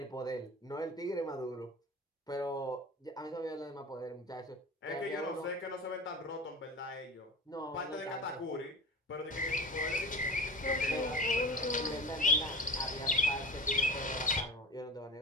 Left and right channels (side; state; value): both; normal; correlation 0.35